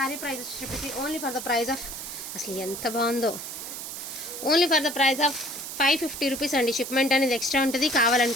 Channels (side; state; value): right; noise; hiss, 8 dB below the sound